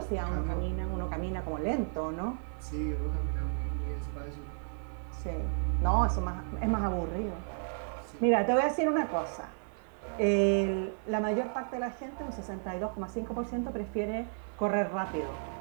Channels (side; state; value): left; silent; digital silence